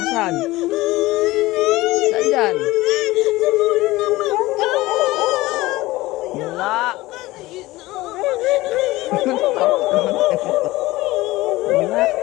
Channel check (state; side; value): quieter; right; 18.8 dB